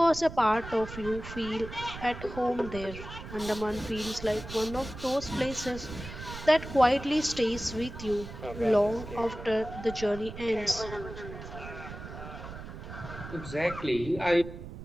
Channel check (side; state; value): right; noise; rumble, 11 dB below the sound